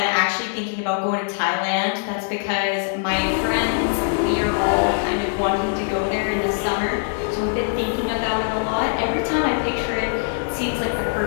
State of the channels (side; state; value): right; silent; digital silence